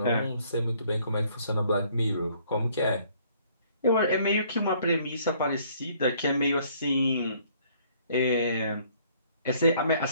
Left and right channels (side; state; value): both; inverted; correlation -0.61